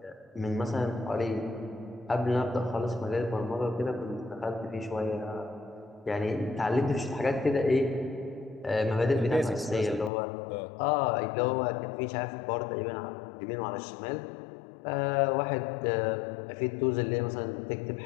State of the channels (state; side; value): drops out; right; at 10.1 s